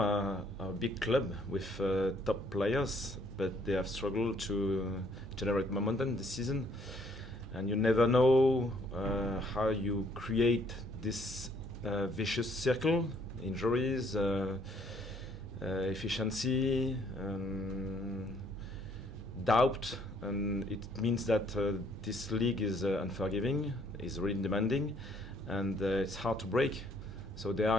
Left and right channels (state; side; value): normal; both; correlation 0.64